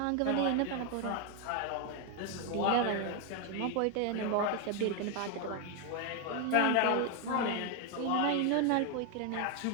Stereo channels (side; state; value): both; different; correlation 0.01